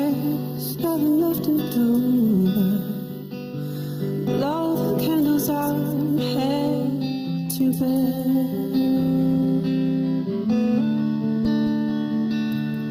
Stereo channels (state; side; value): identical; both; correlation 1.00